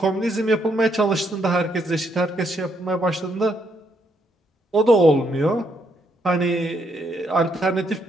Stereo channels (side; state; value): both; normal; correlation 0.75